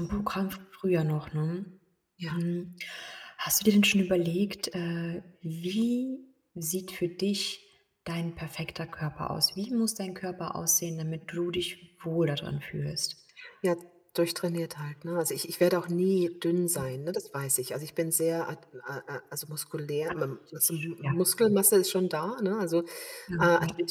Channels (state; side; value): identical; both; correlation 1.00